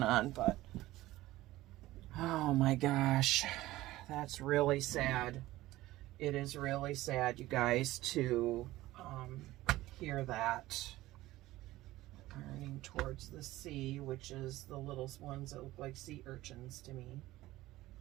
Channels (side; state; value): left; quieter; 16.9 dB